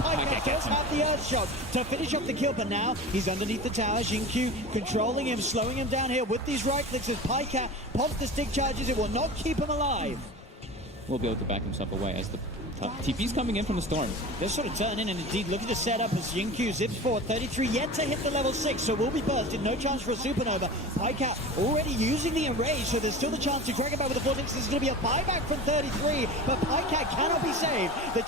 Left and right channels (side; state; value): both; normal; correlation 0.33